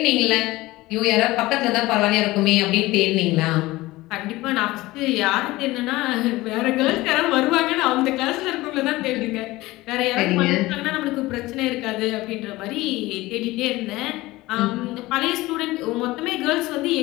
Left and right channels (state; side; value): quieter; right; 19.1 dB